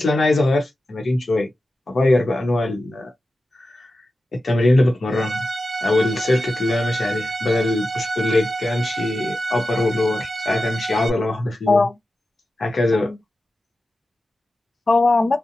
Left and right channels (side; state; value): both; normal; correlation 0.92